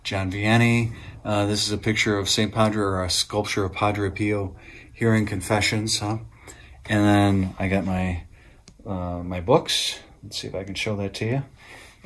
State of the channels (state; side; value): identical; both; correlation 1.00